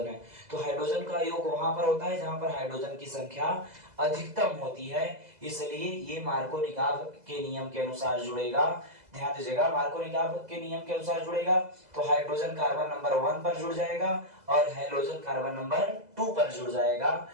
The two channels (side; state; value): left; late; 2.0 ms